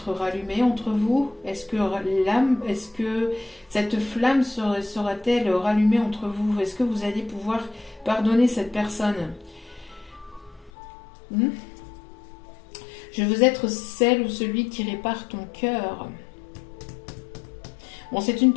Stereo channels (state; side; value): drops out; right; at 10.7 s